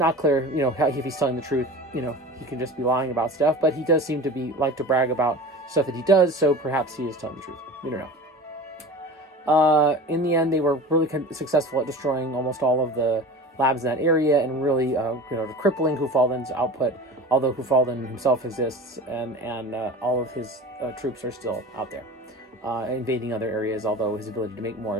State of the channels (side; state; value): both; normal; correlation 0.35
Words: clear, if he's telling the truth. He could just be lying about stuff, but he does seem to like to brag about stuff that he does, so perhaps he is telling the truth. We don't know. In the end, they were really successful at destroying almost all of the labs in that area and really, crippling Kufaldan's output, although Kufaldan himself exists and all of his troops are still out there, invading other areas, although his ability to make more